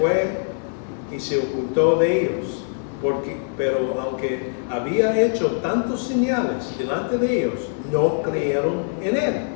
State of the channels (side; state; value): right; silent; 59 dB below the other